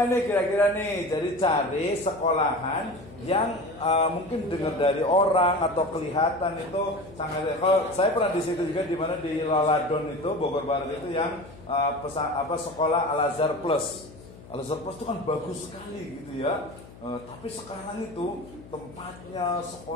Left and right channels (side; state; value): left; noise; hum, 19 dB below the sound